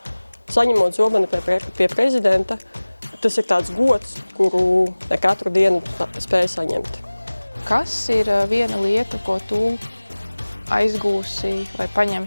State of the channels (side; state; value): both; inverted; correlation -1.00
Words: saņemot zobenu pie prezidenta, tas ir tāds gods, kuru ne katru dienu spēj saņemt. Kas ir viena lieta, ko tu aizgūsi vai